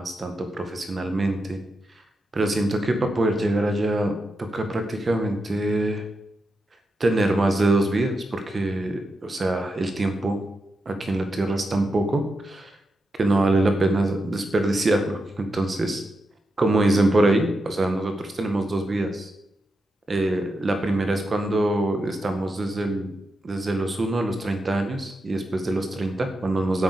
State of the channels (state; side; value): normal; both; correlation 0.87